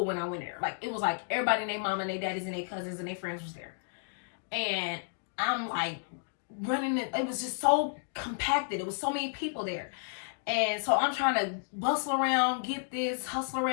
when I went there. Like, it was like everybody and their mama and their daddies and their cousins and their friends was there. And I'm like running it was just so compacted. It was so many people there. And so I'm trying to bustle around, get this, hustle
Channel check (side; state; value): right; silent; digital silence